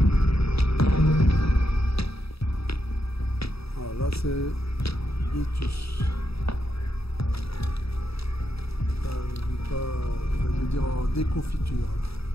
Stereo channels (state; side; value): late; right; 0.77 ms